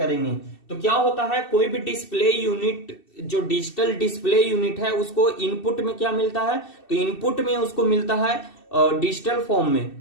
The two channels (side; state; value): right; late; 2.7 ms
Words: तो क्या होता है, कोई भी डिस्प्ले यूनिट जो डिजिटल डिस्प्ले यूनिट है उसको इनपुट में क्या मिलता है, तो इनपुट में उसको मिलता है डिजिटल फॉर्म में।